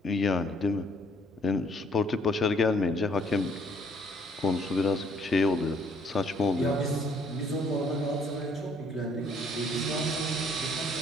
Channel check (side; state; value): both; normal; correlation 0.64